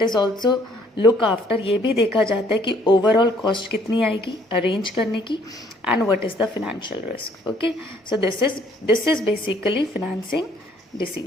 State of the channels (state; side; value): normal; both; correlation 0.62